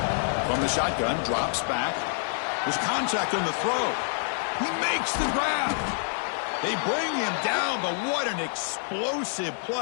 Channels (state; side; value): silent; right; 59 dB below the other